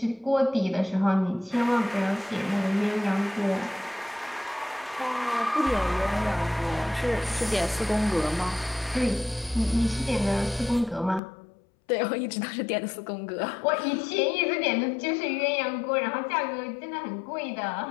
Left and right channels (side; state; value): right; drops out; at 11.2 s